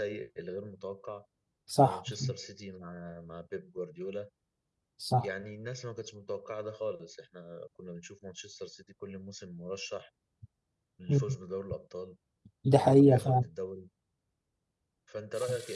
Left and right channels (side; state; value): both; identical; correlation 1.00